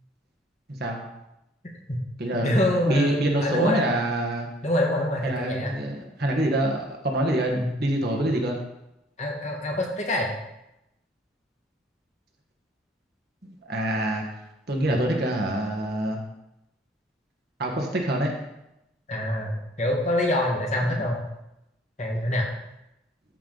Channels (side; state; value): both; normal; correlation 0.58